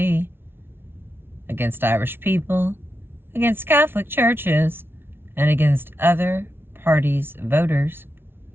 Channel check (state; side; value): late; left; 0.11 ms